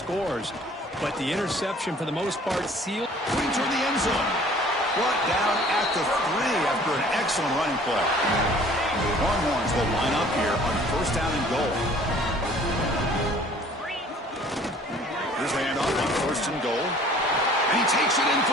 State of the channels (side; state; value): both; normal; correlation 0.52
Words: But the interception, for the most part, sealed. Putting toward the end zone. Brought down at the 3 after an excellent running play. Longhorns will line up here on first down and goal. Here's the handoff on first and goal. And he takes it in for